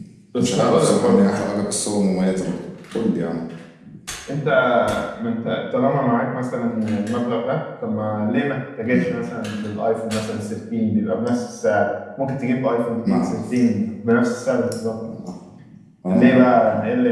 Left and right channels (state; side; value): identical; both; correlation 1.00